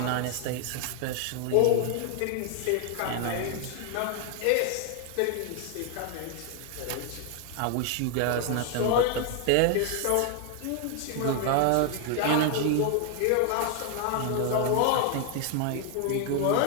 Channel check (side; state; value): both; different; correlation 0.00